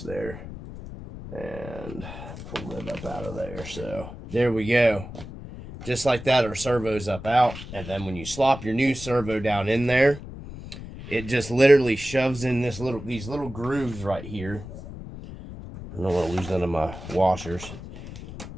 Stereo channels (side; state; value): left; noise; rumble, 12 dB below the sound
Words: And pull that up out of there. So there we go. Just like that, our servo's up out. And then when you slop your new servo down in there, it just literally shoves in these little grooves right here. I don't want to lose none of my washers.